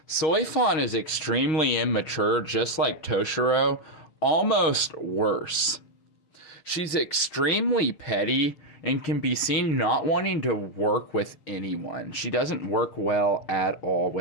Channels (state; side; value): late; right; 6.3 ms